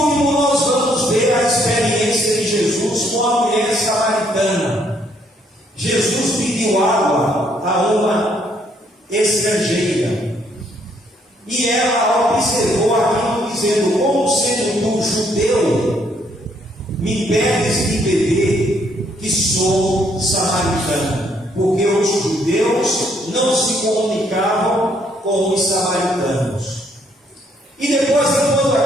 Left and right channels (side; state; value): both; normal; correlation 0.69